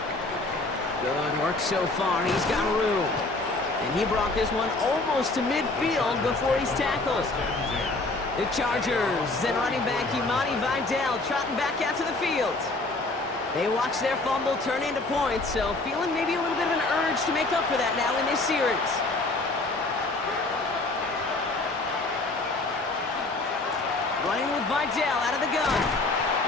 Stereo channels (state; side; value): quieter; right; 3.1 dB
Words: Good work so far. He's got room. And he brought this one almost to midfield before he's tackled. The Chargers, then running back Imani Vidal trotting back out to the field. They watch their fumble turn into points, so feeling maybe a little bit of an urge to make up for that now in this series. Running with Vidal out of the gun.